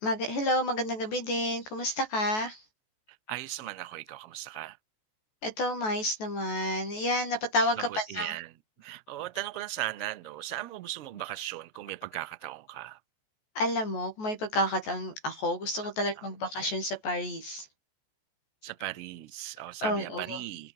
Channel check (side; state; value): right; late; 14 ms